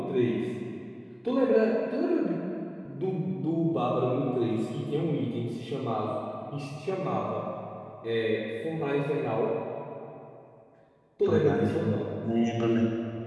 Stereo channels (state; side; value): identical; both; correlation 1.00